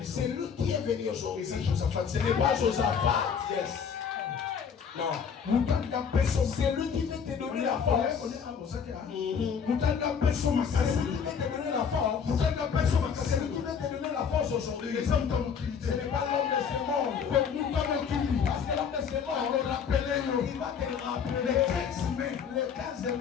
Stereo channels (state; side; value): quieter; right; 6.8 dB